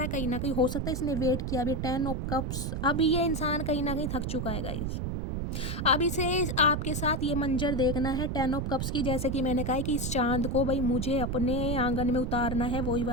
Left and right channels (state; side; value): noise; right; rumble, 2 dB below the sound